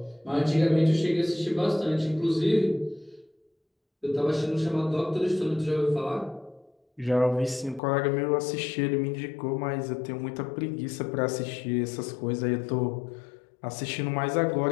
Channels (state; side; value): drops out; right; at 7.8 s